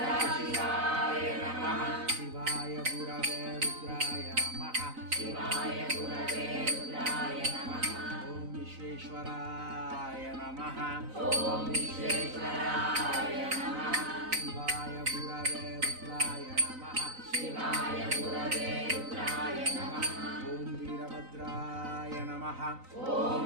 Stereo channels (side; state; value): left; late; 3.9 ms